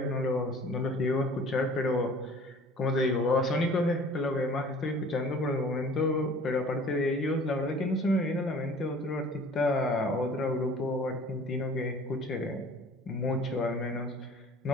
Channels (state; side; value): normal; both; correlation 0.48